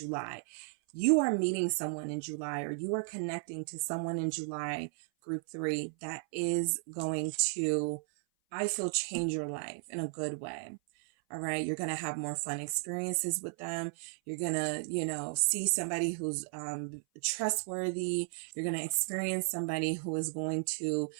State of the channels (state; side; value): silent; left; 55 dB below the other